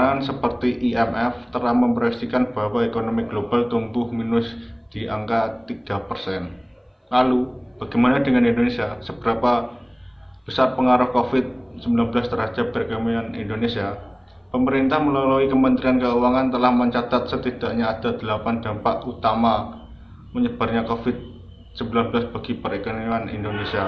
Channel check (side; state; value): both; identical; correlation 1.00